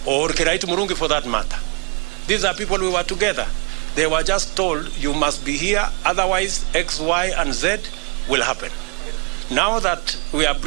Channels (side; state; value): left; quieter; 32.1 dB